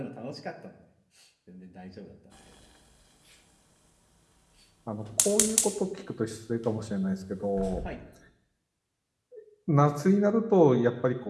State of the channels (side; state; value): both; identical; correlation 1.00